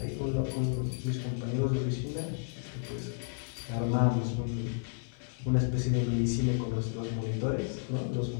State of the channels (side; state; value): right; silent; 56 dB below the other